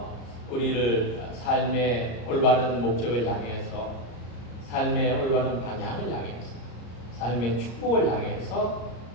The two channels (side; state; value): right; late; 34 ms